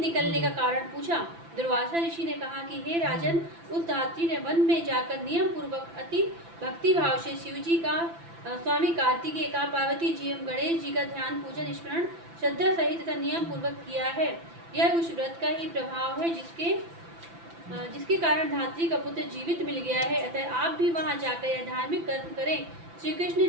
निकलने का कारण पूछा। दुर्वासा ऋषि ने कहा कि हे राजन, उस धात्री ने वन में जाकर नियम पूर्वक अति भक्ति भाव से शिवजी का, स्वामी कार्तिकेय का, पार्वती जी एवं गणेश जी का ध्यान, पूजन, स्मरण श्रद्धा सहित तथा नियम पूर्वक किया है। यह उस व्रत का ही प्रभाव है जिसके कारण धात्री का पुत्र जीवित मिल गया है। अतः आप भी वहां जाकर यह धार्मिक कर्म करें। श्री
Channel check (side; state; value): left; late; 5.9 ms